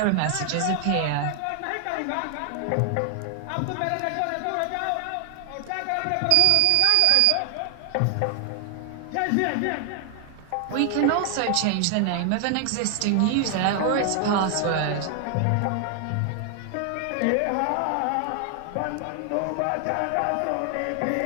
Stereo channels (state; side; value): different; both; correlation 0.00